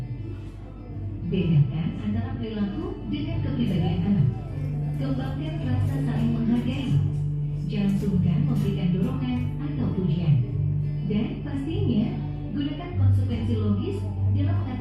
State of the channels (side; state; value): both; identical; correlation 1.00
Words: Bedakan antara perilaku dengan kepribadian anak. Kembangkan rasa saling menghargai. Jangan sungkan memberikan dorongan atau pujian. Dan pastinya, gunakan konsekuensi logis dalam